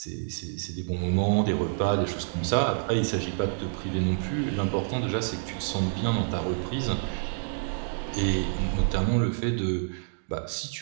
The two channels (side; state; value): left; silent; digital silence